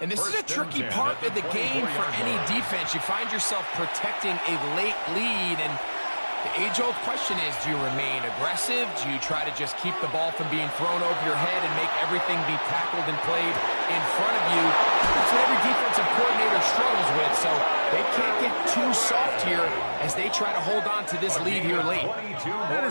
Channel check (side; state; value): both; inverted; correlation -1.00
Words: And this is a tricky part of the game for any defense. You find yourself protecting a late lead, and the age-old question is, do you remain aggressive? Do you try to just keep the ball from being thrown over your head and make everything be tackled and played in front of you? That's what every defensive coordinator struggles with, so they can't get too soft here as they try to hold on to this lead here late. That